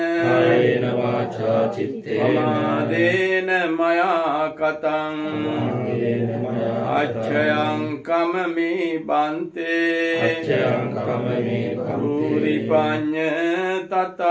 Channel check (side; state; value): both; identical; correlation 1.00